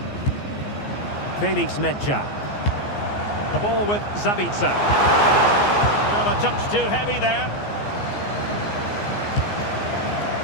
Felix Mecha. The ball with Zabitzer. Well, a touch too heavy there.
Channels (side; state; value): right; late; 14 ms